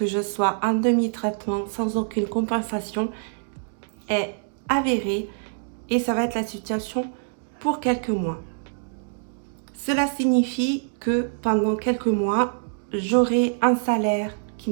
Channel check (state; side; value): silent; left; digital silence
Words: je sois en demi-traitement sans aucune compensation est avéré et ça va être la situation pour quelques mois. Cela signifie que pendant quelques mois, j'aurai un salaire qui